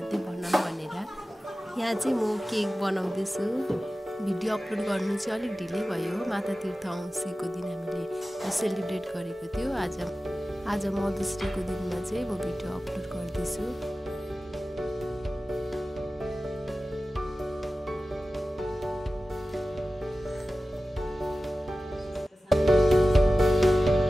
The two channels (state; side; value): normal; both; correlation 0.95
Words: बनाऊँ भनेर। यहाँ चाहिँ म केक बनाउँदैछु। भिडियो अपलोड गर्नु चाहिँ अलिक ढिलै भयो। माता तीर्थ औँसीको दिन हामीले सेलिब्रेट गरेको थियो। आज मदर्स डेको दिनमा चाहिँ म भिडियो अपलोड गर्दैछु।